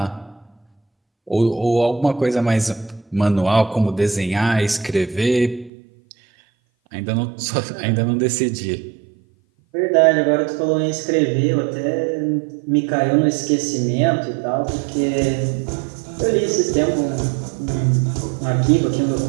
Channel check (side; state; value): left; drops out; at 5.7 s